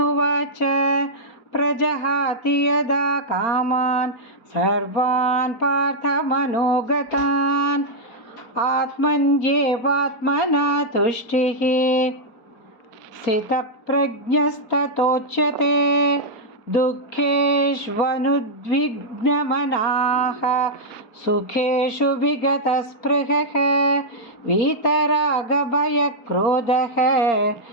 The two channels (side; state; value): right; late; 4.3 ms